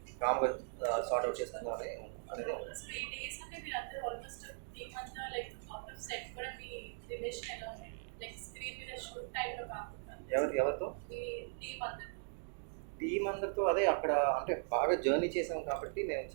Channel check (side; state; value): left; silent; digital silence